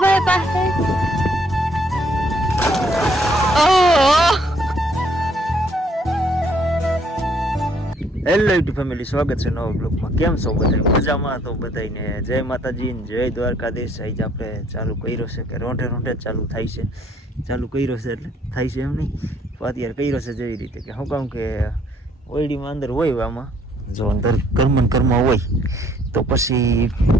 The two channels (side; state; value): both; normal; correlation 0.65